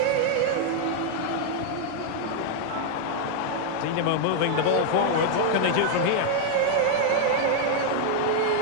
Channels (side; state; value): both; different; correlation 0.00